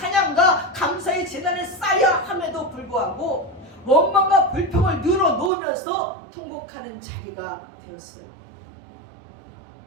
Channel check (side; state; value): left; drops out; at 5.5 s